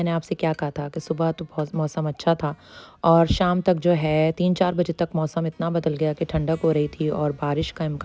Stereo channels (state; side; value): identical; both; correlation 1.00